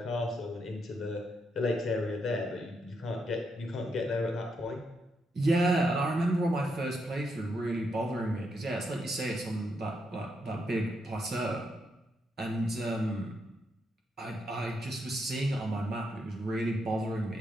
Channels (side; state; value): both; normal; correlation 0.80